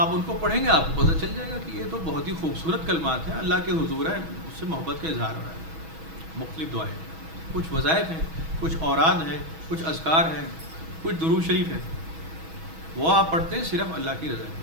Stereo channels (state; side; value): late; left; 6.2 ms